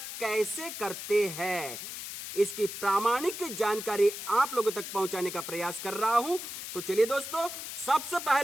कैसे करते हैं इसकी प्रामाणिक जानकारी आप लोगों तक पहुंचाने का प्रयास कर रहा हूं। तो चलिए दोस्तों, सबसे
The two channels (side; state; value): left; noise; hiss, 8 dB below the sound